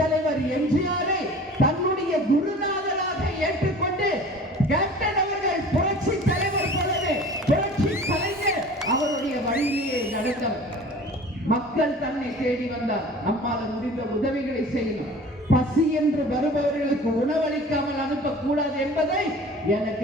எம்ஜிஆரை தன்னுடைய குருநாதராக ஏற்றுக்கொண்டு கேப்டன் அவர்கள் புரட்சி தலைவர் போலவே புரட்சி கலைஞர் அவருடைய வழியிலேயே நடந்தவர். மக்கள் தன்னை தேடி வந்தார். நம்மால் முடிந்த உதவிகளை செய்யணும். பசி என்று வருபவர்களுக்கு உணவளிக்காமல் அனுப்பக்கூடாது என்பதை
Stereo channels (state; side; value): normal; both; correlation 0.43